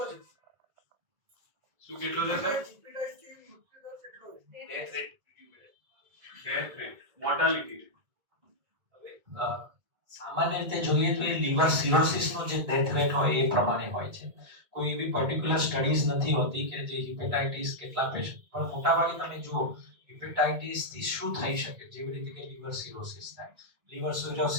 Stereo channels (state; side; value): late; left; 1.8 ms